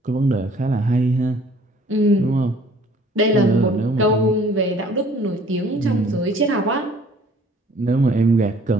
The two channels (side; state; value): both; normal; correlation 0.55